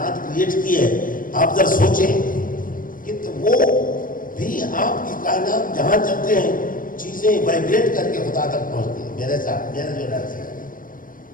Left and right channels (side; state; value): right; late; 0.40 ms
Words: کریٹ کی ہے. آپ ذرا سوچیں کہ وہ بھی آپ کی کائنات جہاں چلتے ہیں چیزیں وائبریٹ کر کے خدا تک پہنچتی ہیں. میرے ساتھ میرا جو رہتا ہے